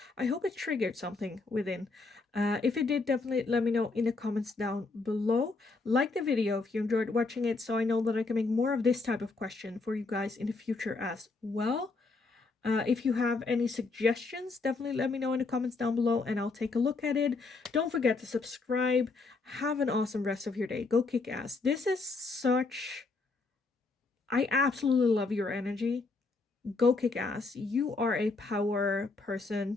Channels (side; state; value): right; quieter; 3.8 dB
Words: I hope it triggered something within. If it did, definitely let me know in the comments down below. Like the video if you enjoyed watching it, so I know that I can make more of this type of question for you guys in the future as well. If you have any suggestions, definitely let me know in the comments down below and I'll take a look at it. Don't forget to subscribe. Have an awesome rest of your day. Go kick ass. This is such... I absolutely love your energy. Go kick ass. You are a power